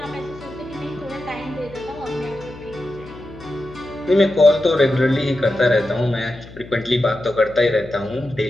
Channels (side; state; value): left; noise; hum, 17 dB below the sound